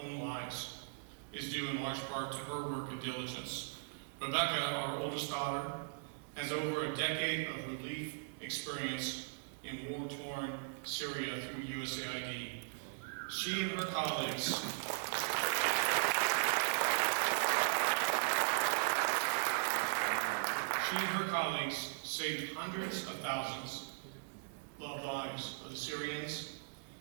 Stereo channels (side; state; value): left; silent; digital silence